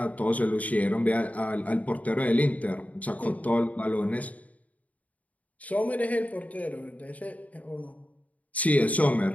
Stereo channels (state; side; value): late; right; 0.071 ms